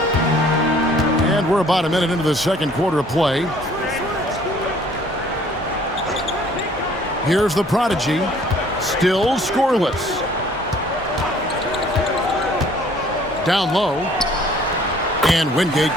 And we're about a minute into the second quarter of play. Here's the prodigy, still scoreless. Down low, and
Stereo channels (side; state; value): both; normal; correlation 0.56